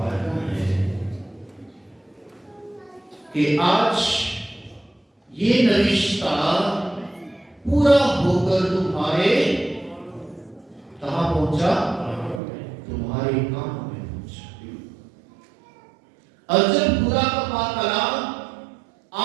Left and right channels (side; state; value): left; drops out; at 12.4 s